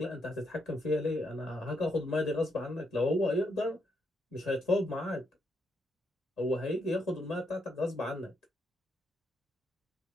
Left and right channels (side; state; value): both; normal; correlation 0.78